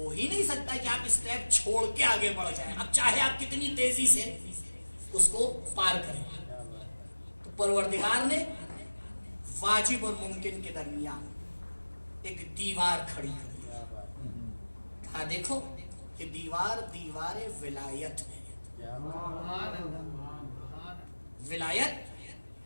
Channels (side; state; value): both; inverted; correlation -1.00